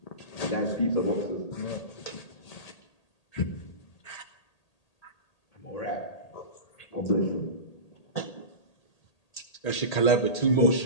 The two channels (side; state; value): right; late; 1.8 ms